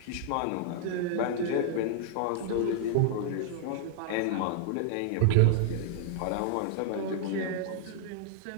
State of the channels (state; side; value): different; both; correlation 0.00